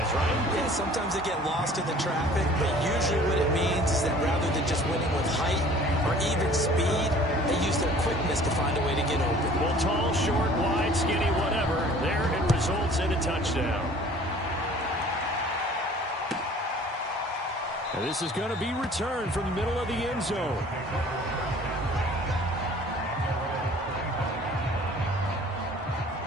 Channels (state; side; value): normal; both; correlation 0.50